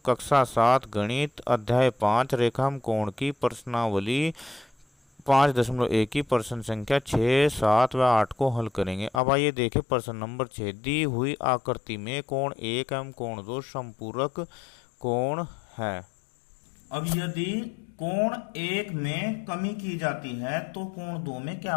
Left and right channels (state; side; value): drops out; right; at 9.2 s